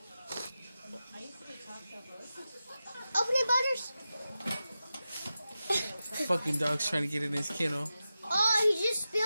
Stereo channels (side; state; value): both; inverted; correlation -0.92